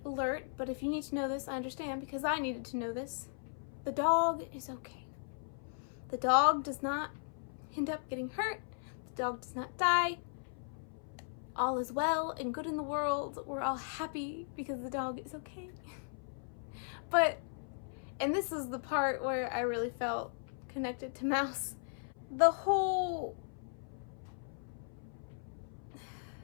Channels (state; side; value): silent; right; 53 dB below the other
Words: alert, but if you need to know this, I understand, because I needed to know this. The dog is okay. The dog does not end up getting hurt. The dog does not die. All is well and good in the world. We're all happy because the dog is okay. But, and this is the part where I really felt connected to Mouse. The whole